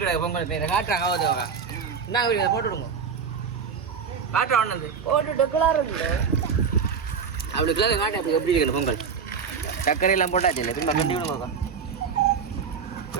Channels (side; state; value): left; quieter; 6.3 dB